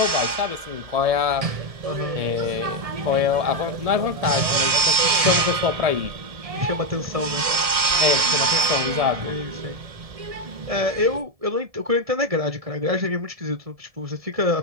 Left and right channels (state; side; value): late; left; 1.7 ms